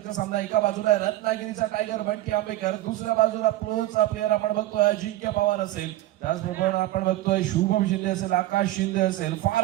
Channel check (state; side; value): quieter; left; 15.7 dB